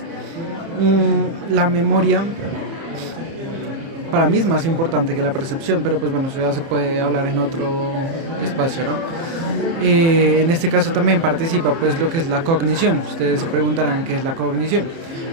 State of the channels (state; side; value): late; left; 30 ms